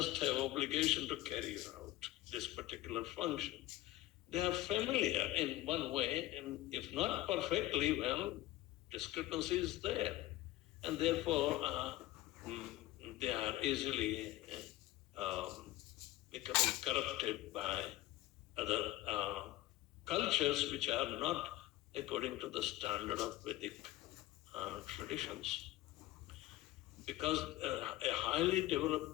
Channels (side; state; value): right; quieter; 16.5 dB